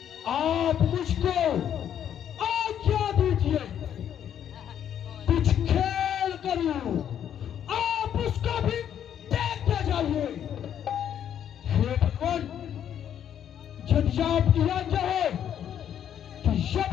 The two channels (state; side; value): quieter; right; 9.6 dB